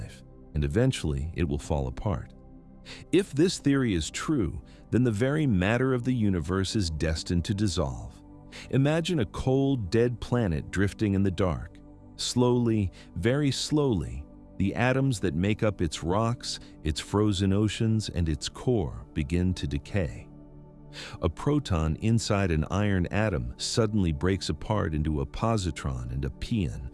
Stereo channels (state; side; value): identical; both; correlation 1.00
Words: and eventually it will fall apart. If this theory is true, then the very matter of the universe is destined to dissolve. Imagine a cold, dead planet drifting in the dark. Slowly, very slowly, the atoms that make up its rocks, its frozen oceans, and its core begin to decay. A proton inside an iron atom suddenly breaks apart into a positron and a pion,